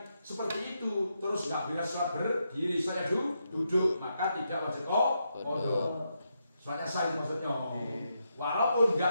seperti itu, terus nggak bisa sholat berdiri, saya duduk, maka tidak wajib qadha. Sholatnya sah maksudnya. Walaupun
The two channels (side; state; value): both; inverted; correlation -0.82